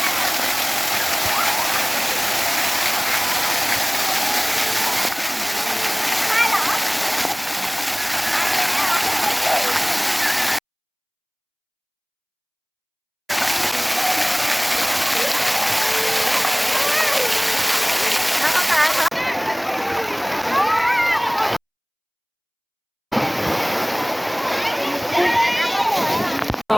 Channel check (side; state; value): both; identical; correlation 1.00